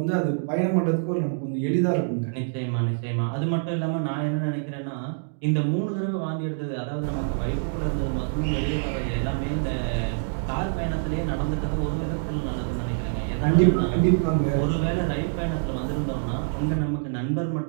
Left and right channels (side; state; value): left; silent; digital silence